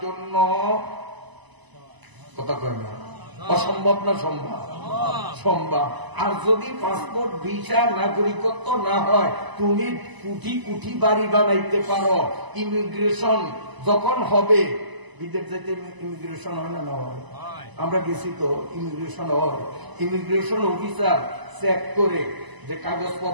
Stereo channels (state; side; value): late; left; 1.0 ms